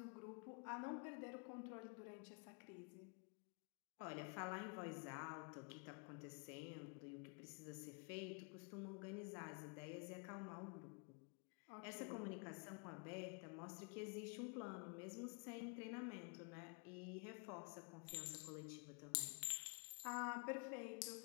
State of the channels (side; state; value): right; quieter; 37.5 dB